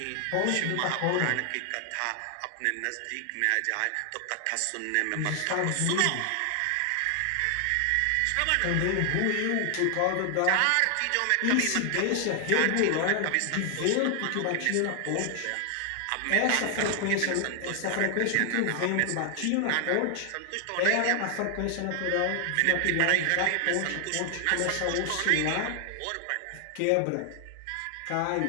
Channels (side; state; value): both; different; correlation 0.00